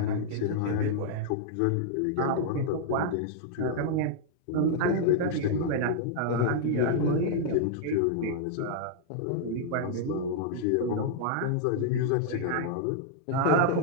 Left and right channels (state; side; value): different; both; correlation -0.01